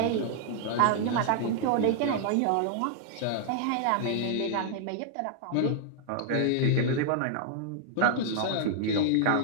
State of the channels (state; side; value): different; both; correlation -0.01